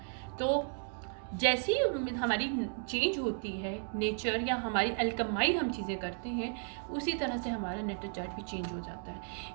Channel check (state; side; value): silent; left; 55 dB below the other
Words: तो जैसी हमारी चेंज होती है नेचर या हमारी अल्कमाई हम चीज़ें करते हैं, उसी तरह से हमारा नेटल चार्ट भी चेंज हो जाता है।